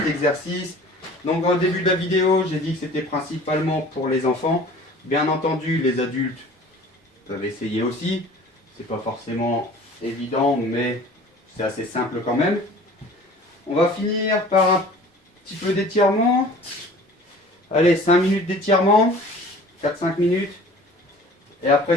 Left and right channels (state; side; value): normal; both; correlation 0.46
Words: exercice. Donc, au début de la vidéo, j'ai dit que c'était principalement pour les enfants. Bien entendu, les adultes peuvent essayer aussi. C'est pas forcément évident, mais c'est assez simple quand même. On va finir par un petit peu d'étirement. Allez, 5 minutes d'étirement. 4-5 minutes. Et après,